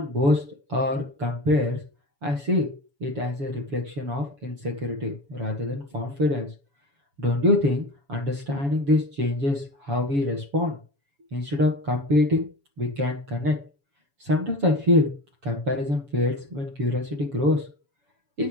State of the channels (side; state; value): left; late; 7.1 ms